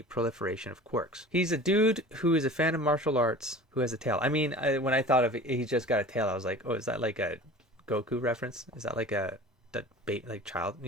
proliferation of quirks. He's a dude who is a fan of martial arts who has a tail. I mean, when I thought of it, he just got a tail, I was like, oh, is that like a Goku reference? Is that like a child,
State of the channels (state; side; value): normal; both; correlation 0.40